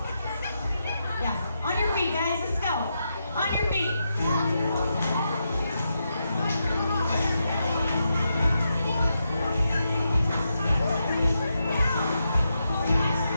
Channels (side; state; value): both; inverted; correlation -0.84